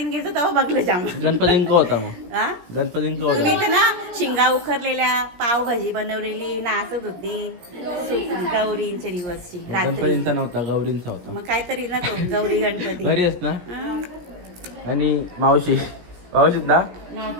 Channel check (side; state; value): left; late; 17 ms